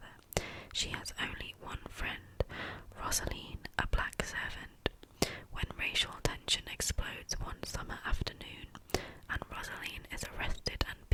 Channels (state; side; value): identical; both; correlation 1.00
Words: She has only one friend, Rosaline, a black servant. When racial tension explodes one summer afternoon and Rosaline is arrested and